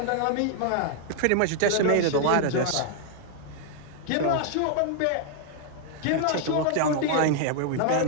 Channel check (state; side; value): different; both; correlation 0.00